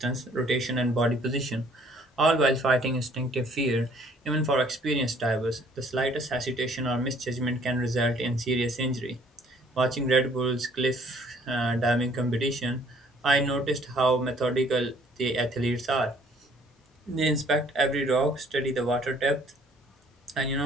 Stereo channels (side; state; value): both; normal; correlation 0.59